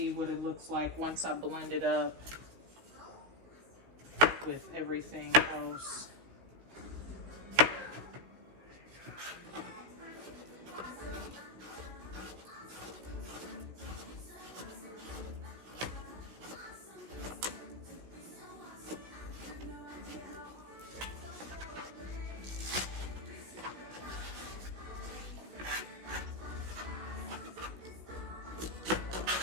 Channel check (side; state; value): left; late; 16 ms